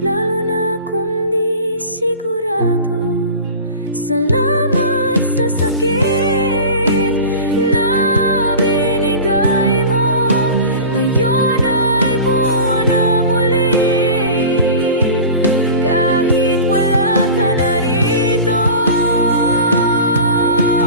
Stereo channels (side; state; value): both; inverted; correlation -0.35